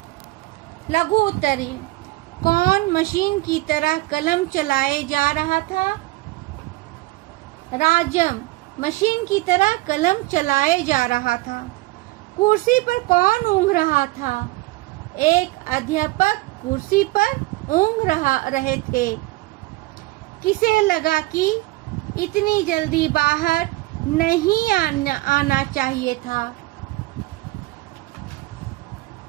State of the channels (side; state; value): left; quieter; 20.5 dB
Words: लघु उत्तरीय, कौन मशीन की तरह कलम चलाए जा रहा था? राजम मशीन की तरह कलम चलाए जा रहा था। कुर्सी पर कौन ऊँघ रहा था? एक अध्यापक कुर्सी पर ऊँघ रहे थे। किसे लगा कि इतनी जल्दी बाहर नहीं आना चाहिए था?